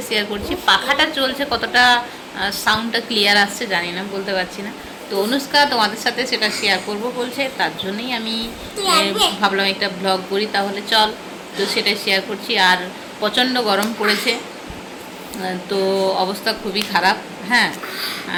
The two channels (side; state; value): both; identical; correlation 1.00